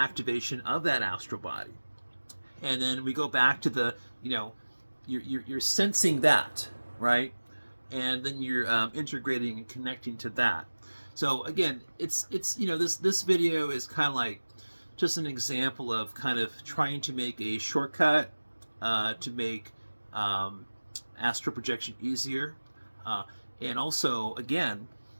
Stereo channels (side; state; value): both; inverted; correlation -1.00